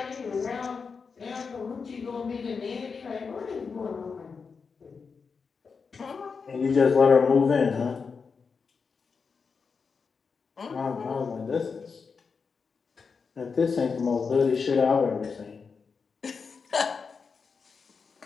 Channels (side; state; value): right; quieter; 5.3 dB